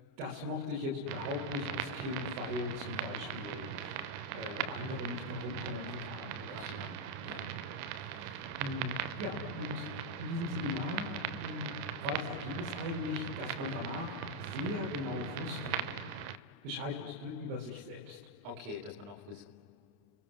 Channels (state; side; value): late; left; 30 ms